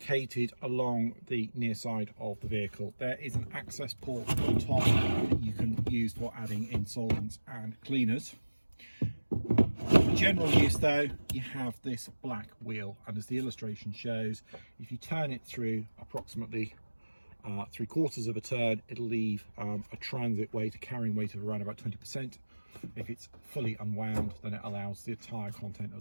along the near side of the vehicle. There is an access port on top that you can use for adding in solvents and cleaners. For general use though, you have this black wheel, and as the illustration shows, if you turn it through approximately 3/4 of a turn, it'll leave a transit weight, a carrying weight of around about 20%. If it's fully unwound, then it allows the entire content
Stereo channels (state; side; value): inverted; both; correlation -1.00